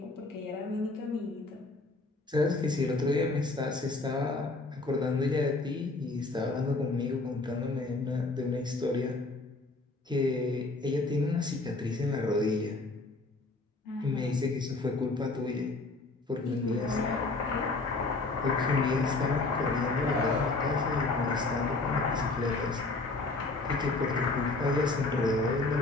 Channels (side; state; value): right; quieter; 3.4 dB